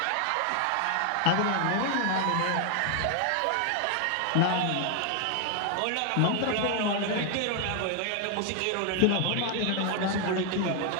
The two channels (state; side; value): different; both; correlation 0.00